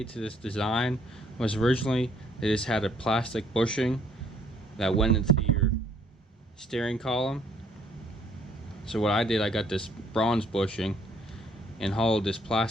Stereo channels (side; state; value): both; normal; correlation 0.64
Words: to this design was originally they just had a plastic bushing that went into your steering column. So what I did, I got this bronze bushing and hollowed this